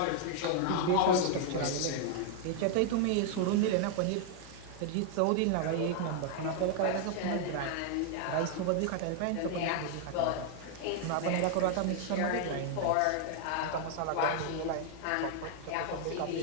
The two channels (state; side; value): different; both; correlation 0.00